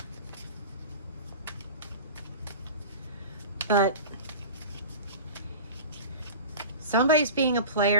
But somebody's being a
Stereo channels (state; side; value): inverted; both; correlation -0.34